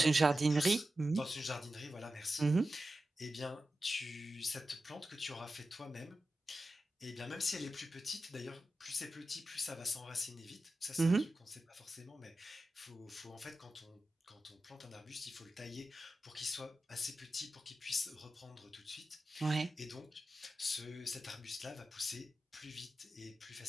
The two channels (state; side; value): normal; both; correlation 0.92